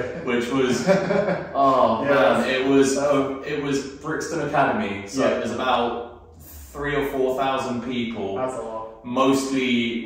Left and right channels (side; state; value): both; identical; correlation 1.00